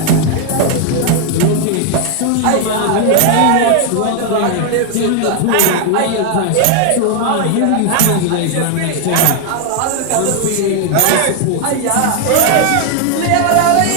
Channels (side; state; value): both; different; correlation 0.00